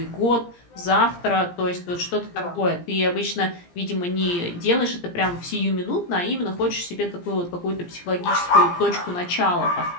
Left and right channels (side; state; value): right; late; 17 ms